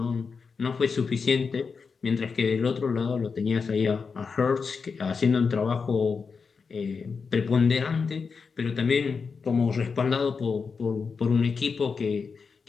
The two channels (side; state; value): right; quieter; 5.2 dB